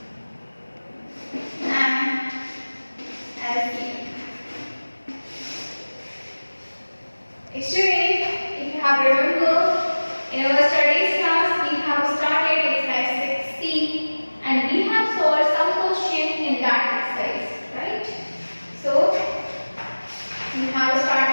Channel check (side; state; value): both; inverted; correlation -1.00